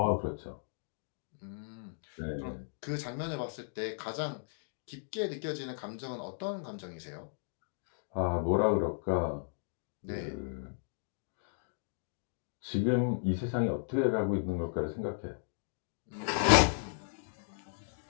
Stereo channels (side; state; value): right; silent; digital silence